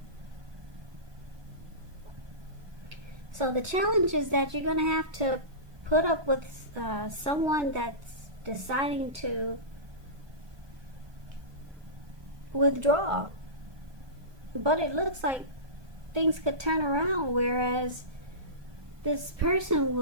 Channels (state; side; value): late; left; 1.2 ms